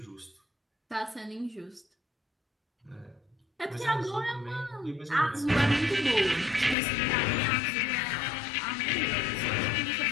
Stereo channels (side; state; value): right; drops out; at 6.8 s